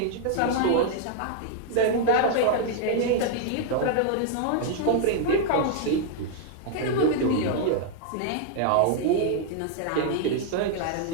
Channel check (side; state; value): both; different; correlation 0.00